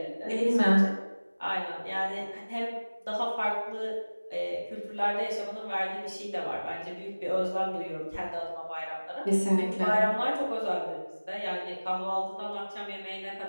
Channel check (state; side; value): inverted; both; correlation -1.00